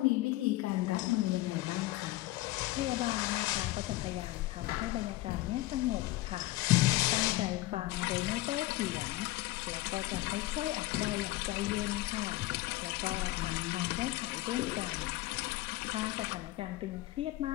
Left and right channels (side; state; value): right; quieter; 18.1 dB